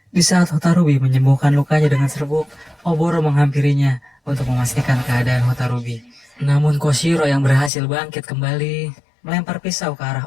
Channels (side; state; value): right; drops out; at 7.7 s